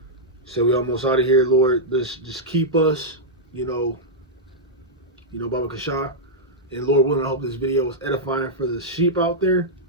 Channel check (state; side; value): normal; both; correlation -0.07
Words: said we almost out of here, Lord. Just keep us. Baba Kasha, and Lord willing, I hope this video was edifying for the sheep out there.